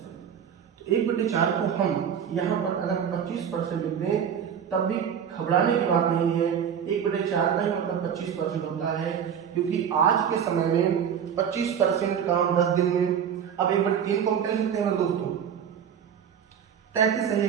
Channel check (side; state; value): left; quieter; 8.2 dB